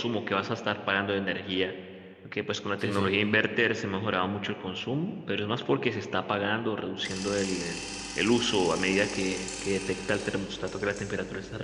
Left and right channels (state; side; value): identical; both; correlation 1.00